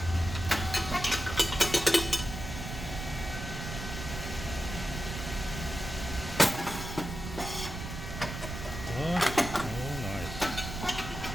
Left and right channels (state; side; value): noise; right; rumble, 7 dB below the sound